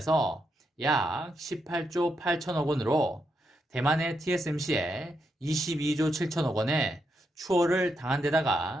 약 18조 8천억 원으로 대만의 TSMC에 22조 7천억 원의 추월을 당한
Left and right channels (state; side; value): normal; both; correlation 0.82